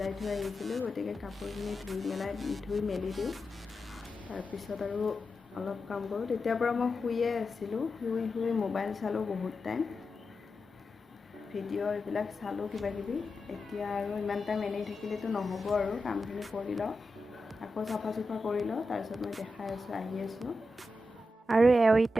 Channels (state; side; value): normal; both; correlation 0.90